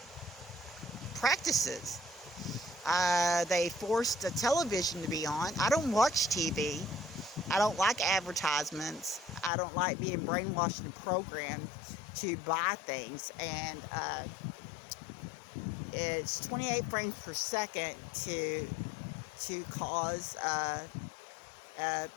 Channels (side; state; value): right; drops out; at 9.5 s